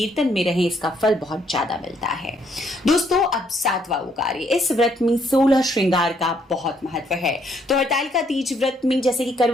में रहें, इसका फल बहुत ज्यादा मिलता है। दोस्तों, अब 7वां वो कार्य, इस व्रत में 16 श्रृंगार का बहुत महत्व है। तो हरतालिका तीज व्रत में जैसे कि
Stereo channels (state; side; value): normal; both; correlation 0.70